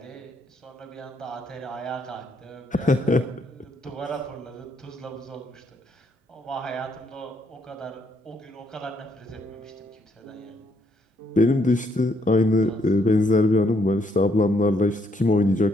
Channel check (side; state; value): both; normal; correlation 0.72